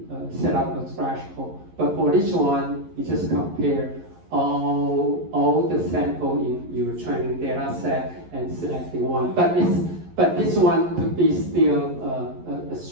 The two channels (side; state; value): left; late; 11 ms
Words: set up a threshold. But for this one, you just compare all the sample in your training data set and select the one. But this one could be still a